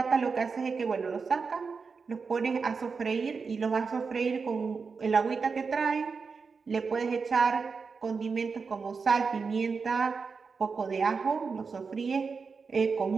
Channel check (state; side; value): quieter; left; 5.1 dB